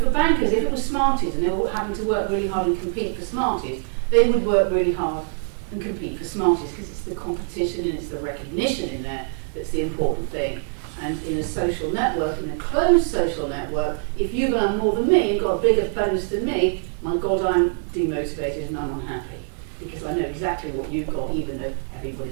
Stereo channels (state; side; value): silent; left; 63 dB below the other